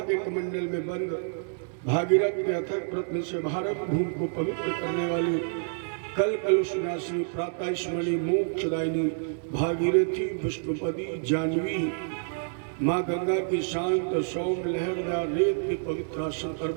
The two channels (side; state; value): left; silent; digital silence